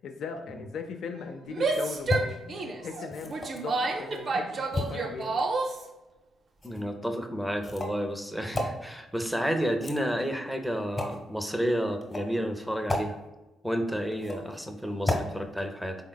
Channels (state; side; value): normal; both; correlation 0.85